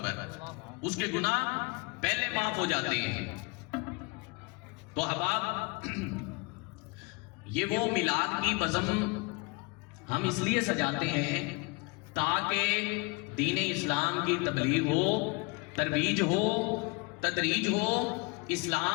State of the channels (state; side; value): quieter; right; 28.2 dB